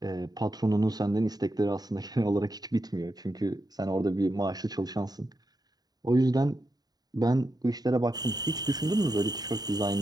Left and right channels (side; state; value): left; late; 0.19 ms